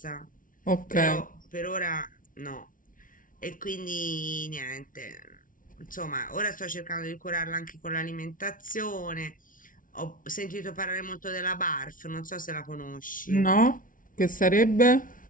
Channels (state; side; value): late; right; 0.39 ms